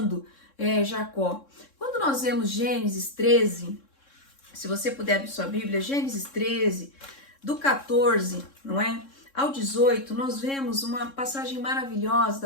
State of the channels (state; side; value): late; right; 3.7 ms